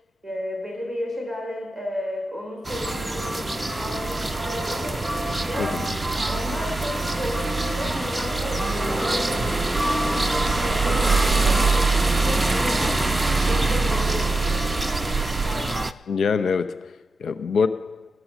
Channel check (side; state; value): both; normal; correlation 0.89